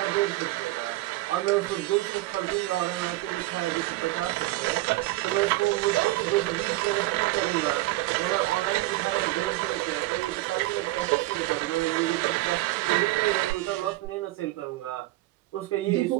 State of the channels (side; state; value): left; quieter; 18.5 dB